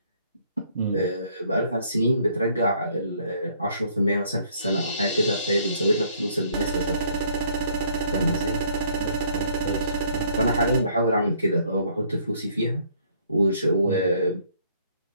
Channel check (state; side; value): inverted; both; correlation -0.63